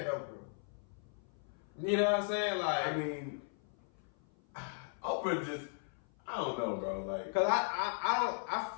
Oprah. You know what I'm saying? Like, I mean, Oprah just, I don't know, bro. Like, because I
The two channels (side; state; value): right; silent; 53 dB below the other